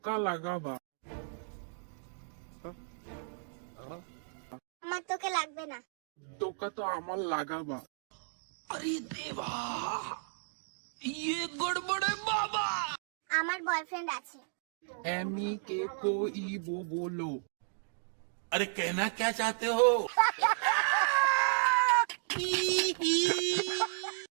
লাগাবা। আমার তোকে লাগবে না। টোকা তো আমার লাগাবা। अरे देवा, ये गड़बड़ है बाबा। আমার বয়ফ্রেন্ড আছে। एमी के कोई वो बोलो। अरे कहना क्या चाहते हो?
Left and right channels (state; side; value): silent; left; digital silence